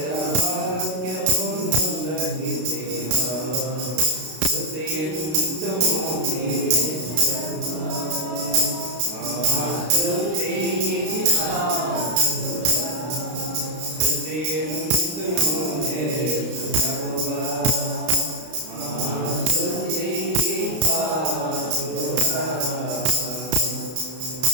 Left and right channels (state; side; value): late; left; 32 ms